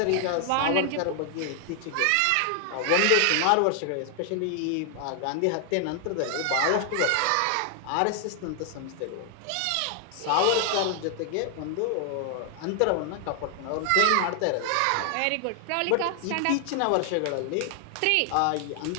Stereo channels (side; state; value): both; different; correlation 0.00